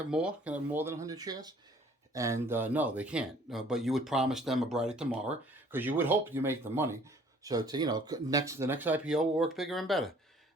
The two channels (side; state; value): both; normal; correlation 0.56